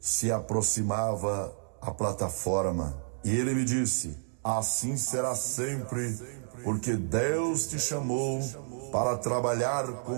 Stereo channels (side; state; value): left; silent; digital silence